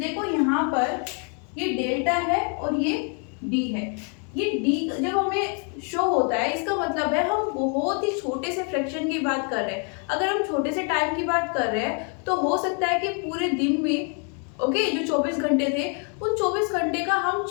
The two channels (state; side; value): quieter; right; 39.8 dB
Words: यहाँ पर ये डेल्टा है और ये डी है। ये डी जब हमें शो होता है इसका मतलब है हम बहुत ही छोटे से फ्रैक्शन की बात कर रहे हैं। अगर हम छोटे से टाइम की बात कर रहे हैं तो हो सकता है कि पूरे दिन में, ओके, जो 24 घंटे थे उन 24 घंटे का हम